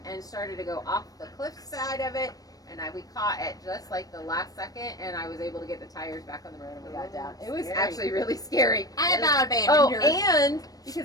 started to go off the cliff side of it, and we caught at just like the last second, and I was able to get the tires back on the road and we got down. It was Scary. actually really scary. I about abandoned her. And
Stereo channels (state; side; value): late; right; 0.18 ms